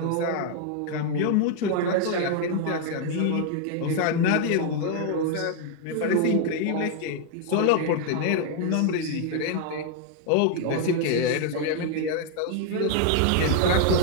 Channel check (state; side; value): different; both; correlation 0.00